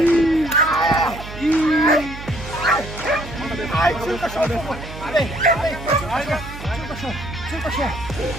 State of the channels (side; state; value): right; noise; hum, 12 dB below the sound